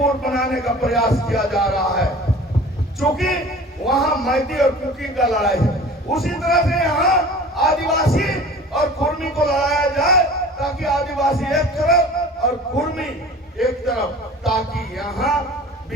बनाने का प्रयास किया जा रहा है, क्योंकि वहां मैती और कुकी का लड़ाई है। उसी तरह से यहाँ आदिवासी और कुर्मी को लड़ाया जाए, ताकि आदिवासी एक तरफ और कुर्मी एक तरफ, ताकि यहाँ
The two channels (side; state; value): both; normal; correlation 0.42